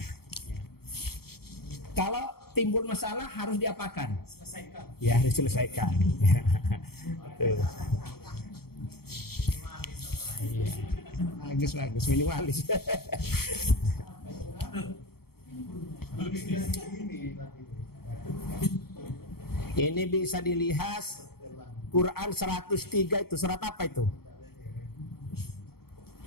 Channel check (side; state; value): right; late; 0.95 ms